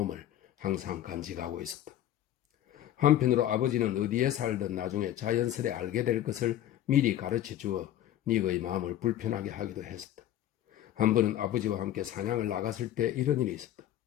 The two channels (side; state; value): right; quieter; 12.2 dB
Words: 항상 간직하고 있었다. 한편으로 아버지는 어디에 살든 나중에 자연스레 알게 될 것을 미리 가르쳐 주어 닉의 마음을 불편하게 하기도 했었다. 한 번은 아버지와 함께 사냥을 나갔을 때 이런 일이 있었다.